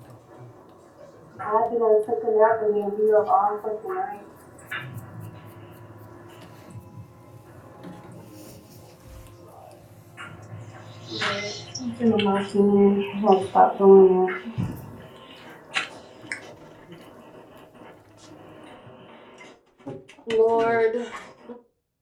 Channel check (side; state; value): both; identical; correlation 1.00